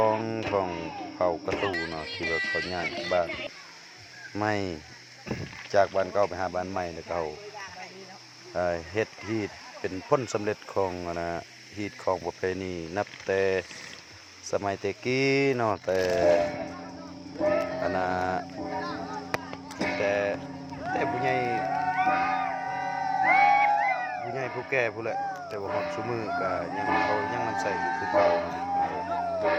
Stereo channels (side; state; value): both; identical; correlation 1.00